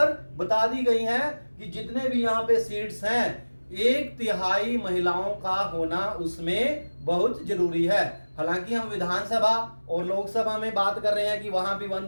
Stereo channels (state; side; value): inverted; both; correlation -1.00